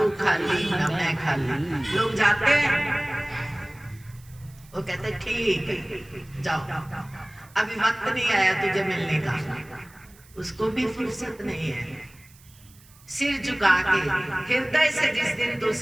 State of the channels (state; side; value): noise; right; hiss, 26 dB below the sound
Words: खाली न मैं खाली। लोग जाते हैं, वो कहते ठीक है जाओ, अभी वक्त नहीं आया तुझे मिलने का, उसको भी फुर्सत नहीं है। सिर झुका के हृदय से जिस दिन तू